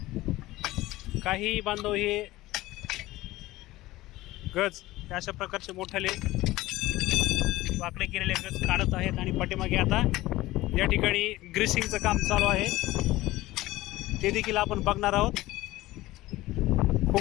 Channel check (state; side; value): quieter; right; 17.7 dB